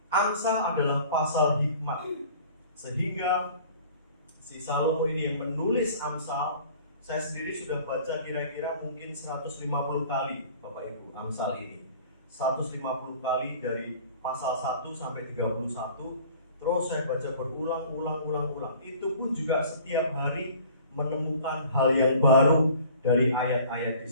Amsal adalah pasal hikmat, sehingga si Salomo ini yang menulis Amsal, saya sendiri sudah baca kira-kira mungkin 150 kali Bapak Ibu Amsal ini. 150 kali dari pasal 1 sampai 31. Terus saya baca berulang. Itu pun juga setiap hari menemukan hal yang baru dari ayat-ayat di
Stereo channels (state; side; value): inverted; both; correlation -0.48